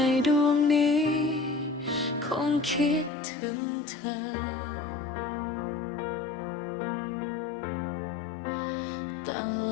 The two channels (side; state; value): right; drops out; at 3.1 s